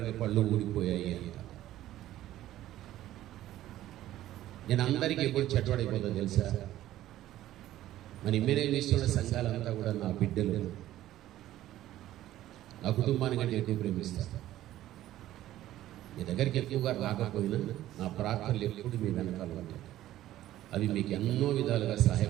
పళ్ళు ఊడిపోయాయి అంట. నేను అందరికీ ఎప్పుడు చెడ్డవాడైపోతుందో తెలుసా? మన ఇమ్మేనేం చేస్తున్న సంఘాలంతా కూడా నా బిడ్డలు, నా కుటుంబానికి అంటే ఎక్కువ ప్రేమిస్తారు. మీ దగ్గరికి ఎక్కువగా రాకపోయినా నా ప్రార్థనలు ఎప్పుడు మీ వెనకాల ఉంటాయి. అవి మీకు ఎన్నో విధాలుగా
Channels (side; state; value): left; quieter; 13.9 dB